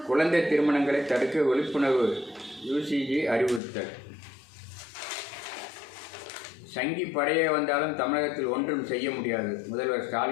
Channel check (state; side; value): drops out; right; at 3.6 s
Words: குழந்தை திருமணங்களை தடுக்க விழிப்புணர்வு யுசிஜி அறிவுறுத்தல். சங்கி படையே வந்தாலும் தமிழகத்தில் ஒன்றும் செய்ய முடியாது. முதல்வர்